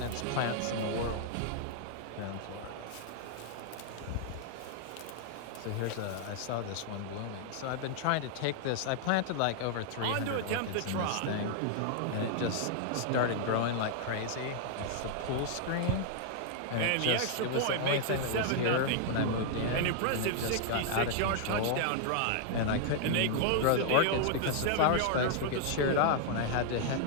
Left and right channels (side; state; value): both; different; correlation -0.01